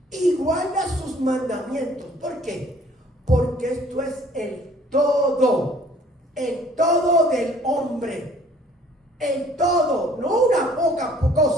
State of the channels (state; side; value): normal; both; correlation 0.56